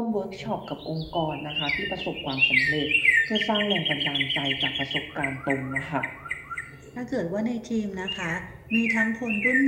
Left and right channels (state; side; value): identical; both; correlation 1.00